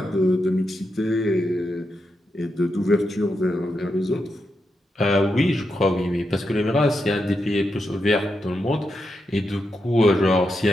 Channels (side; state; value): both; normal; correlation 0.85